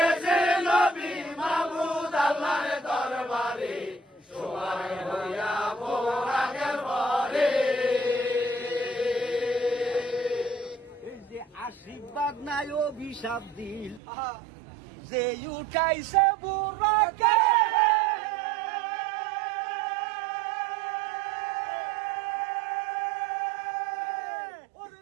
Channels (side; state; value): left; drops out; at 14.0 s